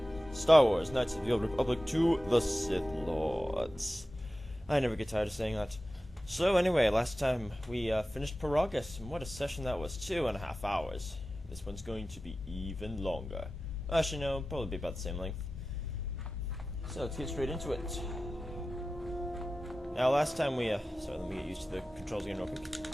Star Wars Knights of the Old Republic 2, the Sith Lords. I never get tired of saying that. So anyway, last time we finished Paragus, and what a session that was, 2.5 hours. This one's going to be even longer. Actually no, probably be about the same length. So let's get straight into it. Now last time we, sorry, let me get used to the controls again real quick.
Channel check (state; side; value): normal; both; correlation 0.95